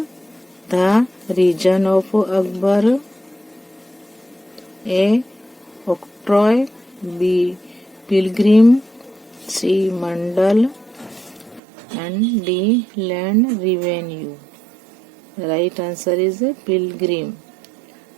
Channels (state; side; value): drops out; left; at 11.6 s